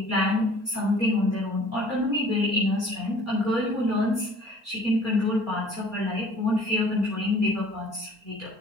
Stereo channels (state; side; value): late; left; 4.4 ms